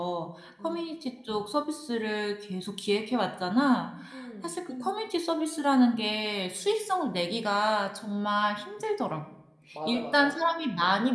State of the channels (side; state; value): both; identical; correlation 1.00